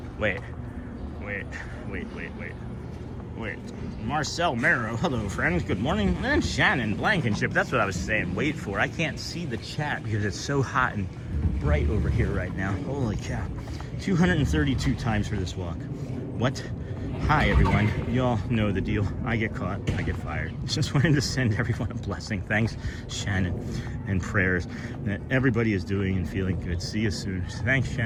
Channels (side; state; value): both; identical; correlation 1.00